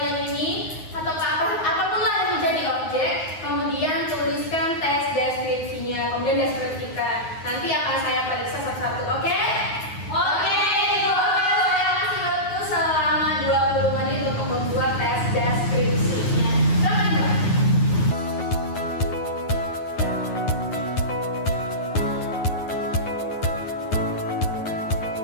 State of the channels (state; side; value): late; right; 9.5 ms